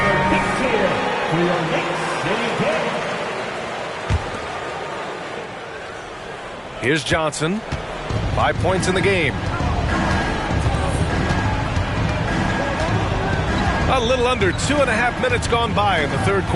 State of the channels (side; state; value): both; identical; correlation 1.00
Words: big cheer for your Knicks City Kids. Here's Johnson. 5 points in the game. A little under 2.5 minutes gone by in the third